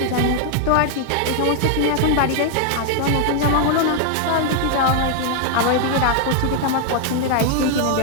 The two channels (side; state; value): both; different; correlation 0.00